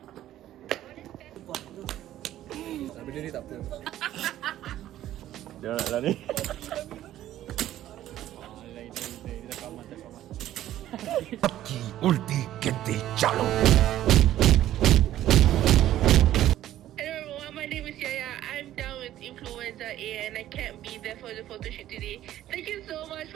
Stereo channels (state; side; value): quieter; left; 13.0 dB